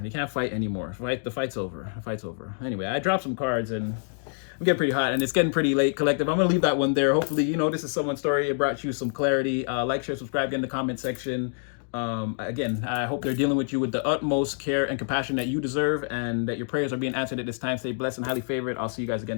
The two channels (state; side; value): silent; right; digital silence